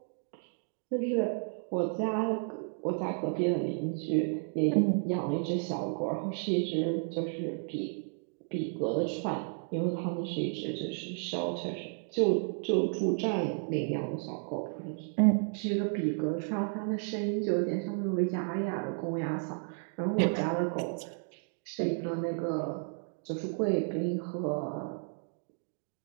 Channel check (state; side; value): silent; left; 56 dB below the other